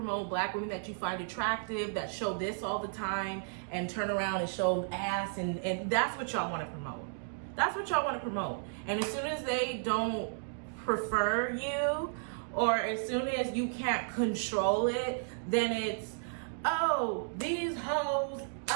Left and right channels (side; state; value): left; silent; digital silence